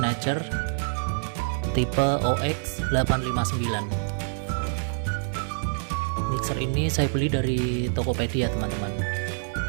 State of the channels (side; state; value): left; silent; digital silence